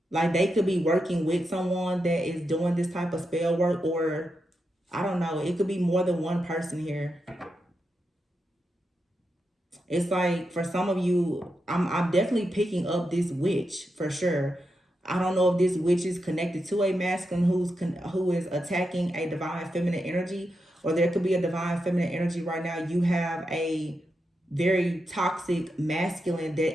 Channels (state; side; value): normal; both; correlation 0.86